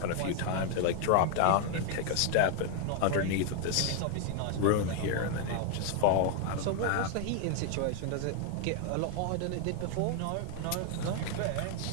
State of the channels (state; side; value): different; both; correlation 0.00